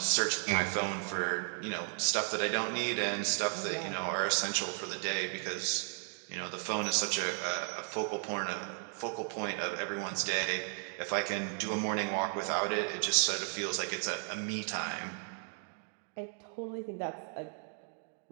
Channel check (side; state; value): left; silent; 54 dB below the other